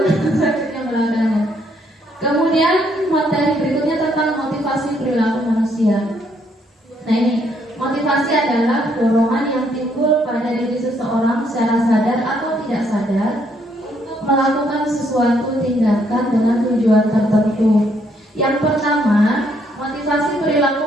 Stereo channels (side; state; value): both; normal; correlation 0.71